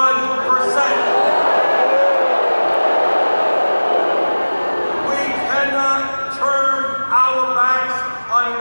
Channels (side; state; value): both; inverted; correlation -1.00